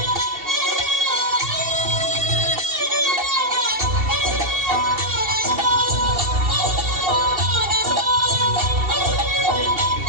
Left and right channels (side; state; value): left; late; 2.7 ms